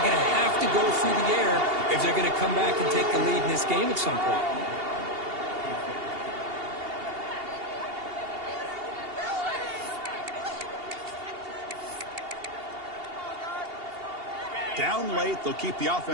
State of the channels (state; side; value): late; left; 2.8 ms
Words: going to have to go through the air if they're going to come back and take the lead in this game at some point. Down late, they'll keep the